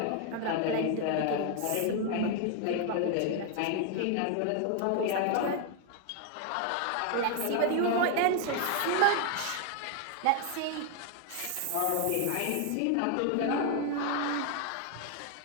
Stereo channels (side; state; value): both; different; correlation 0.01